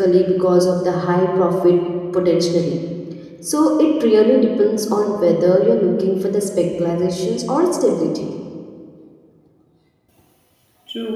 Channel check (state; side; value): identical; both; correlation 1.00